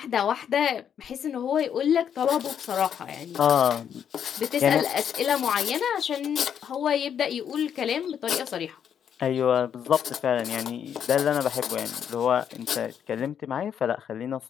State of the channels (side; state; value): right; quieter; 8.5 dB